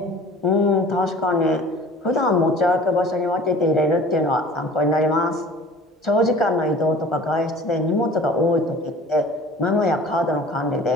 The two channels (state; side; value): normal; both; correlation 0.45